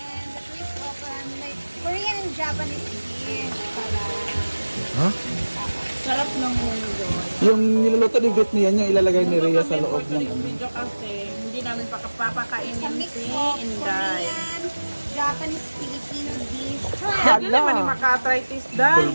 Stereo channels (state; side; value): inverted; both; correlation -1.00